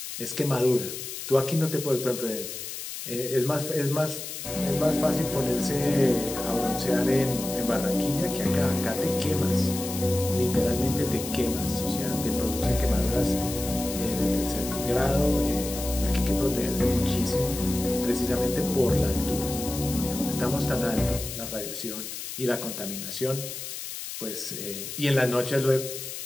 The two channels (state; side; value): noise; left; hiss, 8 dB below the sound